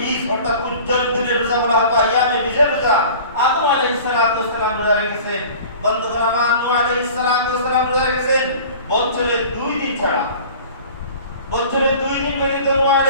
অর্থাৎ উজ্জ্বল দিনের রোজা বলা হয়। আইয়ামে 20 এর রোজা আদম আলাইহিস সালাতু ওয়াস সালাম রোজা রেখেছেন। বন্ধুগণ আমার, নূহ আলাইহিস সালাতু ওয়াস সালাম রোজা রেখেছেন বছরে 2 দিন ছাড়া। বছরে 2 দিন ব্যতীত নূহ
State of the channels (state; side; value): inverted; both; correlation -0.43